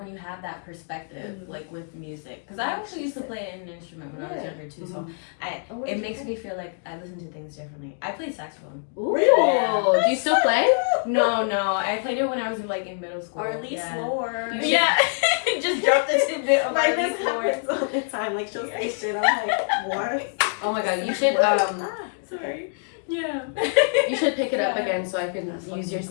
you have that perspective, like with music. Because I actually used to play an instrument when I was younger too, so it makes me feel like I listen to things differently. I play saxophone. Ooh. Really? Do you still play? No, I played it when I was like in middle school. Or at least lower. Yeah, just dropped it to bit of like this happens all the time. Like she'll say shit, I'm like, what? Oh my god, you should sorry. Yeah. You should pick it up again so I can use your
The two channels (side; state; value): right; silent; digital silence